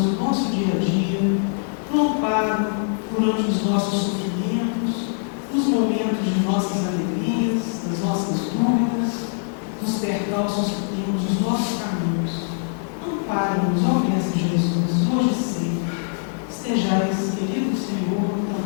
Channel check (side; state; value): right; silent; digital silence